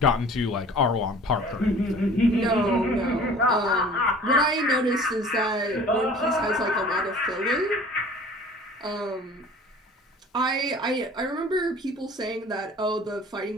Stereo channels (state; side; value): normal; both; correlation 0.47